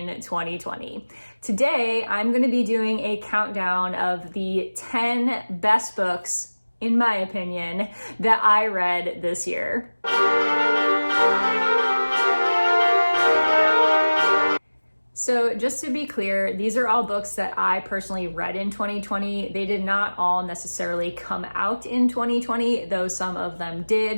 2020. Today I'm going to be doing a countdown of the 10 best books, in my opinion, that I read this year. So just to be clear, these are all books that I personally read in 2020. They did not all necessarily come out in 2020, though some of them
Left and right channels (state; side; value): inverted; both; correlation -1.00